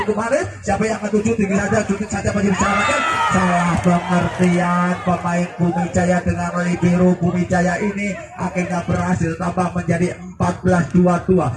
Siapa yang akan tuju tinggi saja, cukup saja masih diselamatkan. Salah pengertian pemain Bumi Jaya dengan libero Bumi Jaya ini akhirnya berhasil tambah menjadi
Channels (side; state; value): both; identical; correlation 1.00